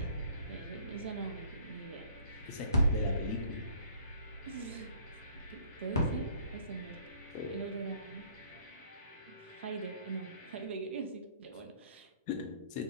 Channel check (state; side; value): inverted; both; correlation -0.56